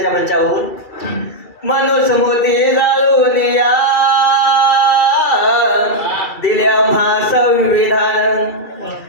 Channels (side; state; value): right; late; 2.3 ms